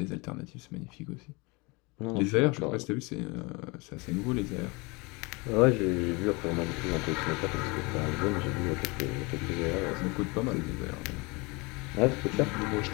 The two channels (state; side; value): quieter; right; 26.8 dB